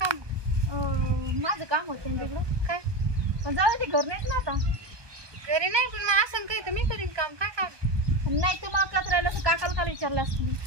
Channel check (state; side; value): late; left; 1.2 ms